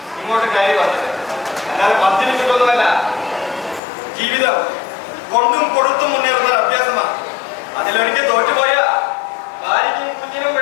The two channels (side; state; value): right; drops out; at 3.8 s